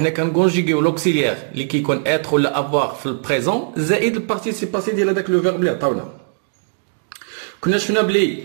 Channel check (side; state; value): left; silent; digital silence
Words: كنكونجوغيو لوكسيليير اللي كيكون être ولا avoir في البريزون زائد البارتيسيب باسي ديال هذاك لو فيرب اللي عطاونا. كنا شفنا بلي